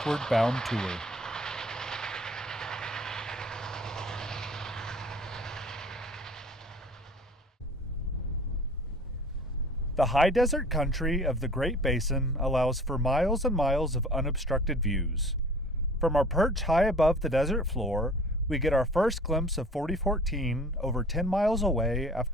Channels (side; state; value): both; normal; correlation 0.47